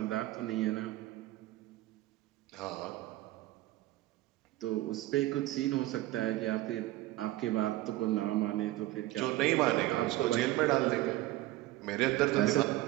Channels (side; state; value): left; quieter; 17.1 dB